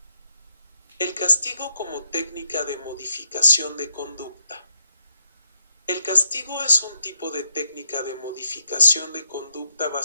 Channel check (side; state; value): both; inverted; correlation -0.79